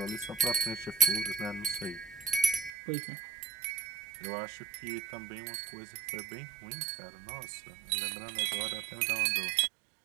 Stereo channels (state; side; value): drops out; left; at 2.7 s